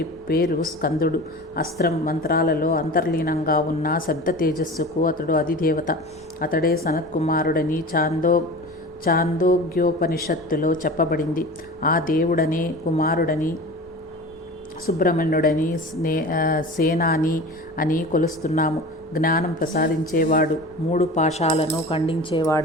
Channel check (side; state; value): both; normal; correlation 0.35